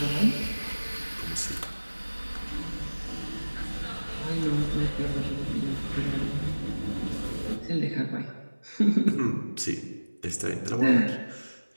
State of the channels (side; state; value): both; inverted; correlation -1.00